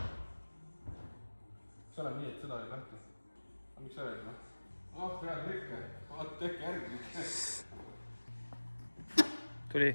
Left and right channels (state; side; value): inverted; both; correlation -1.00